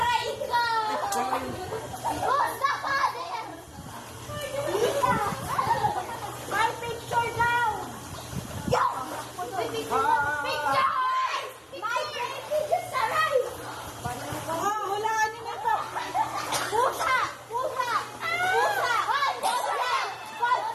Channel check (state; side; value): identical; both; correlation 1.00